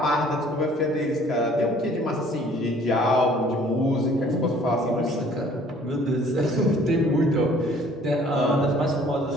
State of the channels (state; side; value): normal; both; correlation 0.55